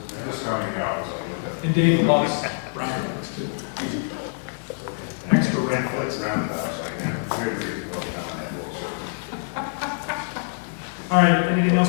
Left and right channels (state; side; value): silent; right; digital silence